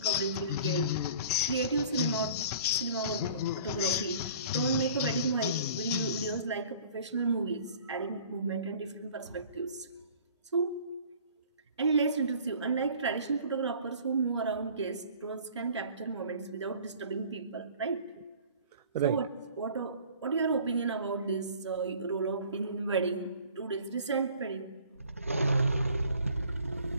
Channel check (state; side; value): inverted; both; correlation -0.49